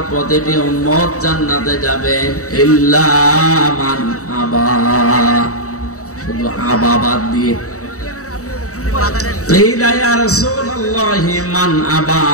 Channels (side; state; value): right; late; 0.65 ms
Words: প্রতিটি উম্মত জান্নাতে যাবে, ইল্লা মান আবা, শুধু আবা বাদ দিয়ে। কিলা ইয়া রাসূলুল্লাহি মান আবা,